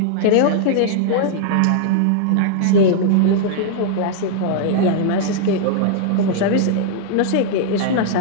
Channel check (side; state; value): both; different; correlation -0.01